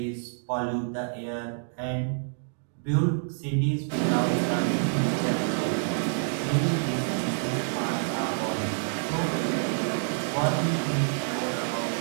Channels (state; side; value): silent; left; digital silence